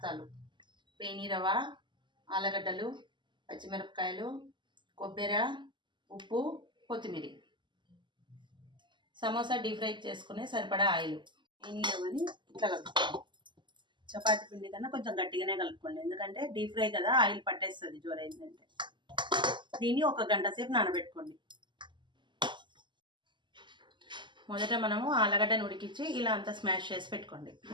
పేని రవ్వ, ఆలుగడ్డలు, పచ్చిమిరపకాయలు, కొబ్బరి, ఉప్పు, కొత్తిమీర. సమోసా డీప్ ఫ్రై చేసుకునే సరిపడా ఆయిల్. పేని రవ్వని ఇట్లా కలుపుకోండి. చపాతీ పిండి కన్నా కొంచెం గట్టిగానే కలుపుకోండి, ఎందుకంటే డీప్ ఫ్రై కదా, ఆయిల్ పట్టేస్తుంది జోరైందంటే. దీన్ని 1 గంట సేపు నానబెట్టుకోండి. మొదట మనము ఆలుగడ్డను ఉడికించి ఇలా అంతా స్మాష్ చేసి పెట్టుకోండి.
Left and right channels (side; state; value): left; late; 0.22 ms